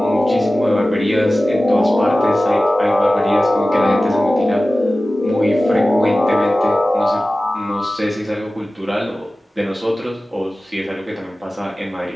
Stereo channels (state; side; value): normal; both; correlation 0.96